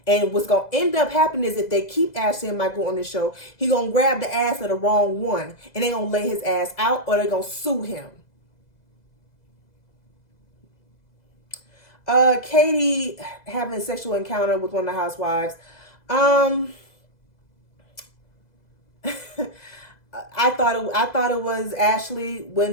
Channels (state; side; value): late; right; 2.0 ms